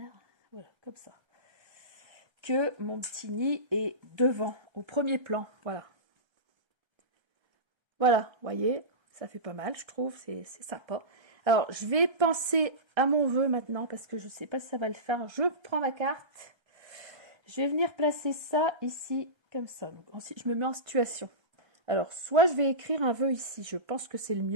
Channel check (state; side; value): late; left; 1.3 ms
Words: Voilà, comme ça. Que mon petit nid est devant, au premier plan. Voilà. Voilà, vous voyez, ça fait pas mal, je trouve. C'est sympa. Alors, je vais penser à mon vœu maintenant, parce que je ne sais pas si ça va le faire. Je prends ma carte. Je vais venir placer ça ici, comme ça. Donc, ensuite, je me mets en situation. Alors, soit je vais écrire un vœu ici. Je pense que c'est le